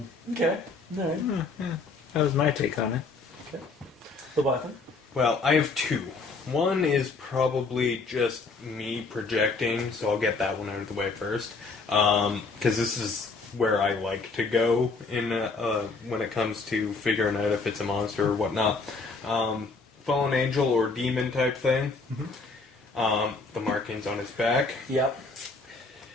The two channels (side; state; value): right; quieter; 4.0 dB